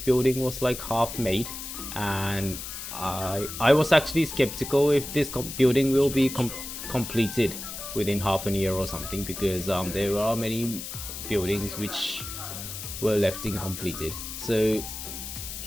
was like half made, and I was actually skeptical if this building will be completed within half a year or something, because there are many buildings which were left incompleted. So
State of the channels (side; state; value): left; noise; hiss, 8 dB below the sound